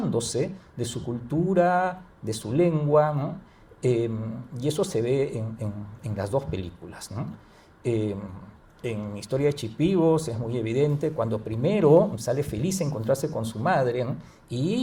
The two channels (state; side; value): identical; both; correlation 1.00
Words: de su cultura, de su lengua, ¿no? Y eso se ve en las dos películas, ¿no? En Historia de Chipivos es muy evidente cuando primero sale feliz a encontrarse con su madre, ¿no?,